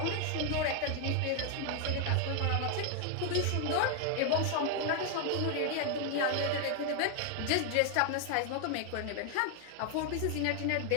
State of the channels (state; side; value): different; both; correlation 0.00